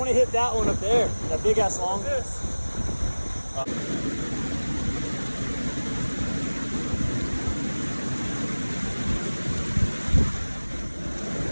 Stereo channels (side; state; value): both; inverted; correlation -1.00